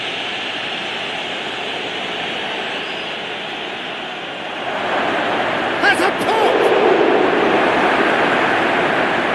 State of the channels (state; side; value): identical; both; correlation 1.00